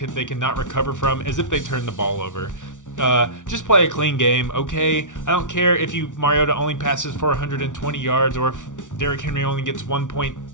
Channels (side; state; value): right; late; 0.87 ms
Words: cannot recover from is if they turn the ball over. Just play a clean game, okay? I don't care if Mariota only passes for 120 yards or if Derrick Henry only gets